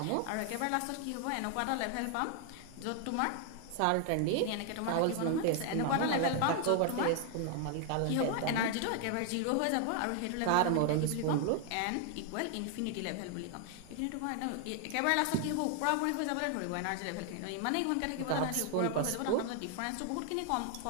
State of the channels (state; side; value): different; both; correlation 0.00